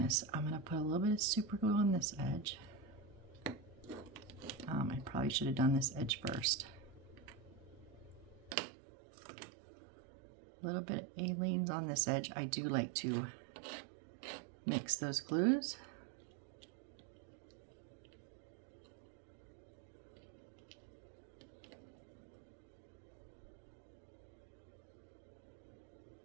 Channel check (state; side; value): drops out; left; at 8.6 s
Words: I'm gonna put a little bit of super glue on this edge. I probably should have done this edge first. A little bit of Aleene's on this edge. I do like to mix those glues.